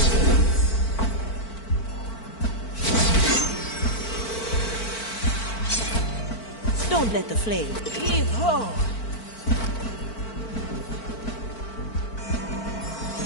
Don't let the flame. Heave-ho!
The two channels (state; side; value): late; right; 4.5 ms